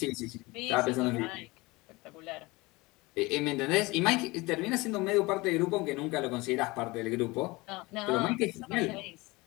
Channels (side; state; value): right; quieter; 23.0 dB